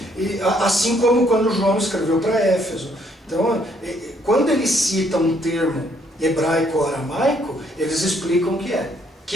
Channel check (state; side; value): normal; both; correlation 0.68